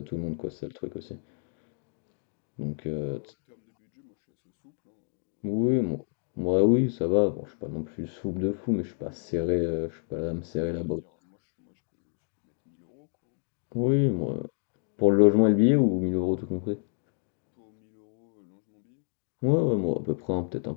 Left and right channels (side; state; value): right; silent; 58 dB below the other